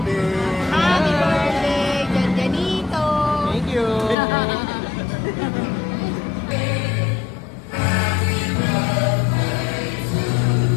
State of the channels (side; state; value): right; drops out; at 4.2 s